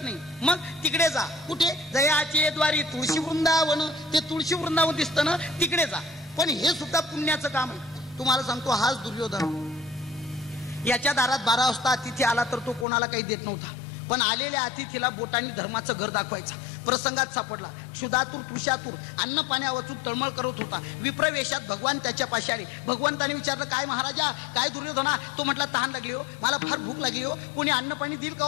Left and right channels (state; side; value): drops out; right; at 12.9 s